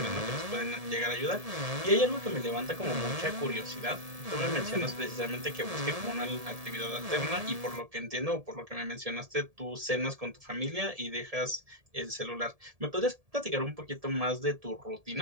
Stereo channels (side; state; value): left; late; 1.7 ms